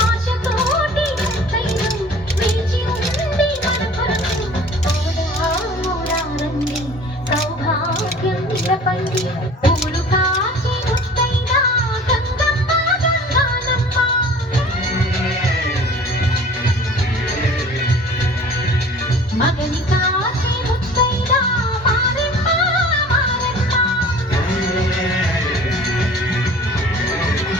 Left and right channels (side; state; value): both; normal; correlation 0.46